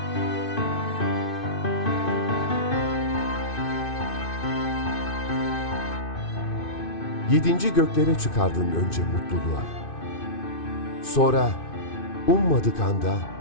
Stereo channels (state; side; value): late; right; 2.5 ms